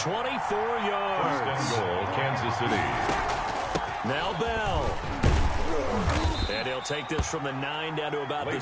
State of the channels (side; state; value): both; identical; correlation 1.00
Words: yards. First and goal, Kansas City. Now Bell. And he'll take this from the 9 down to about the